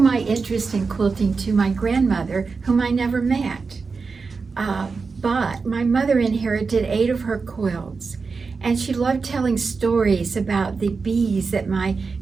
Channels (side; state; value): left; quieter; 4.7 dB